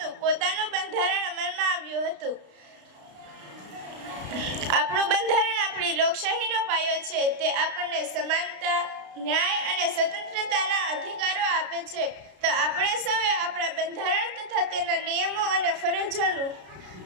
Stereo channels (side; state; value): left; late; 33 ms